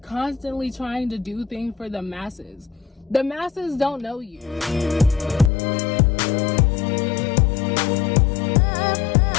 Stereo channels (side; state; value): right; drops out; at 5.5 s